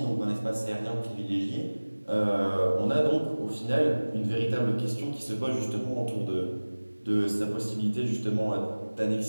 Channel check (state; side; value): inverted; both; correlation -1.00